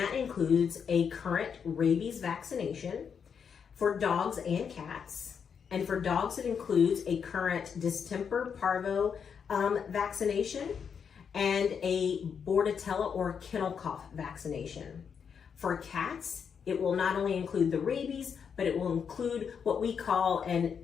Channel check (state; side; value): quieter; right; 6.9 dB